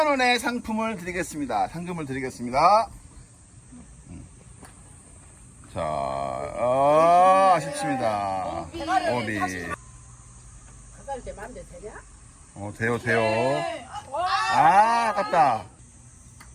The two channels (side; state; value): both; identical; correlation 1.00